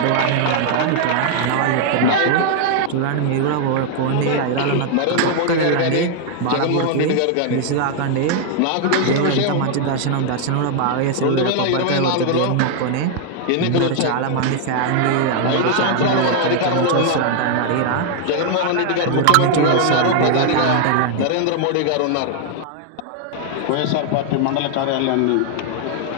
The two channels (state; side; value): different; both; correlation 0.00